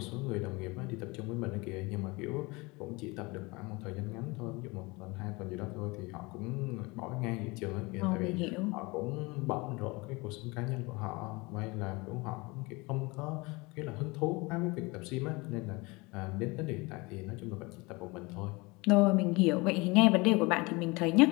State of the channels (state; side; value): quieter; right; 25.1 dB